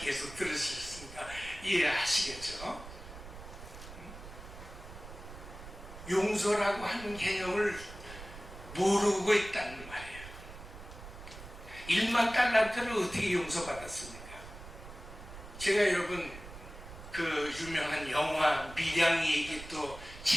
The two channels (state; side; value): noise; right; rumble, 14 dB below the sound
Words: 들으셨으니까 이해하시겠죠? 용서라고 하는 개념을 모르고 있다는 말이에요. 1만 달란트를 어떻게 용서받았습니까? 제가 여러분 그 유명한 영화 밀양 얘기 또